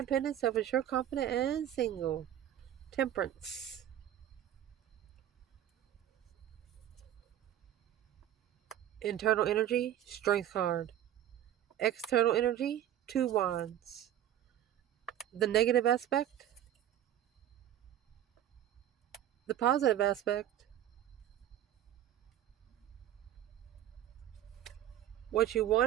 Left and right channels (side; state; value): left; quieter; 11.6 dB